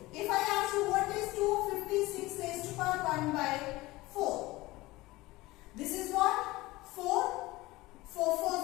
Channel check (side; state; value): right; quieter; 19.8 dB